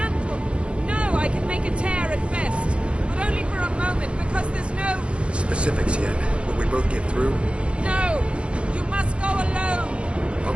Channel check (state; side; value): late; left; 0.058 ms